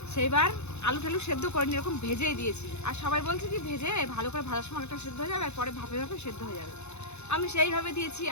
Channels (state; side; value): late; right; 0.81 ms